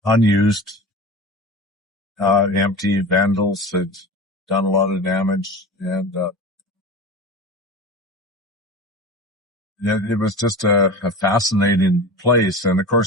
unused, empty. Vandals had done a lot of damage, and it was just a fascinating place. And of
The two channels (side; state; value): both; normal; correlation 0.32